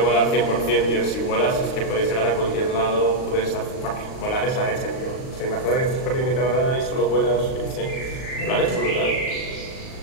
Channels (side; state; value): right; late; 38 ms